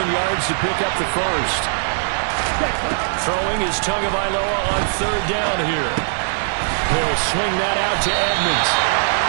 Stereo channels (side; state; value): left; silent; 59 dB below the other